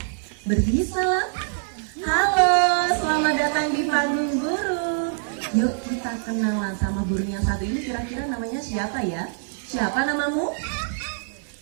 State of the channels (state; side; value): silent; left; digital silence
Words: salam. Halo, selamat datang di panggung burung. Yuk kita kenalan sama burung yang satu ini. Kira-kira namanya siapa ya? Siapa namamu?